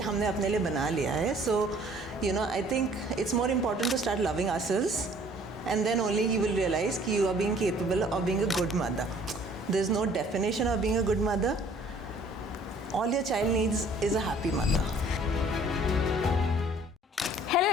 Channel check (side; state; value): both; normal; correlation 0.56